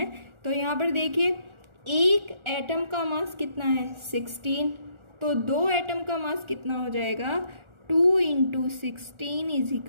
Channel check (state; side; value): late; left; 1.4 ms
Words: तो यहाँ पर देखिए एक एटम का मास कितना है 16, तो 2 एटम का मास कितना हो जाएगा 2 × 16 =